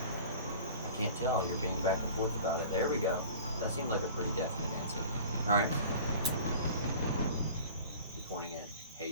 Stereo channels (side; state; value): both; inverted; correlation -0.42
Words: can't tell. You're being back and forth about it. There we go. That seemed like a pretty definite answer. Alright. You're pointing at